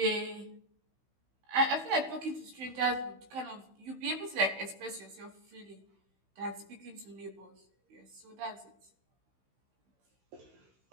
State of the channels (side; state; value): left; late; 16 ms